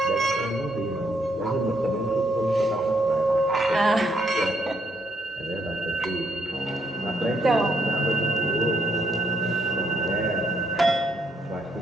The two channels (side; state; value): both; normal; correlation 0.74